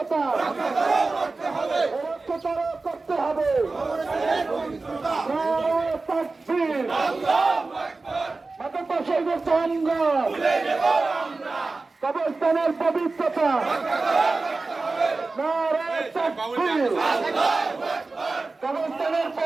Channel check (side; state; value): left; quieter; 3.7 dB